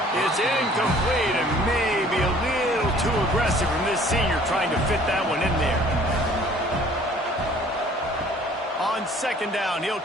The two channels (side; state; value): both; normal; correlation 0.54